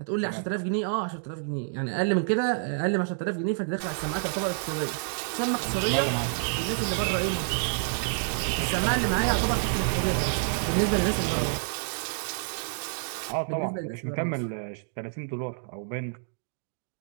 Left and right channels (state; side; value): silent; left; digital silence